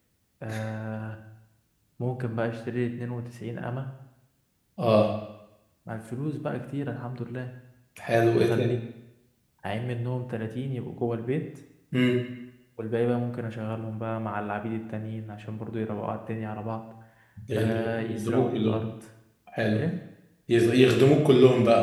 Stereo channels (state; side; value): identical; both; correlation 1.00